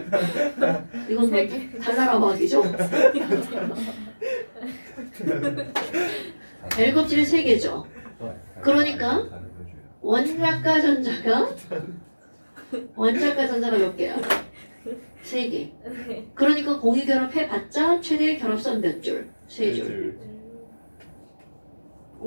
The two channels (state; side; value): inverted; both; correlation -1.00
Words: 이건 뭐 달나라 막이죠? L 껍질에 3개죠. 그러니까 원자과 전자가 몇 개야? 3개. 그러니까 공유 결합해봤자 최대 결합선 몇 줄? 3줄.